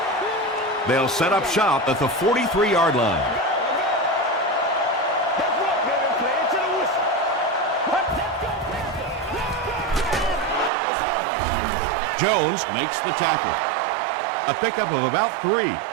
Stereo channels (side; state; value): left; drops out; at 10.7 s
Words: They'll set up shop at the 43-yard line. Jones makes the tackle. A pickup of about 3.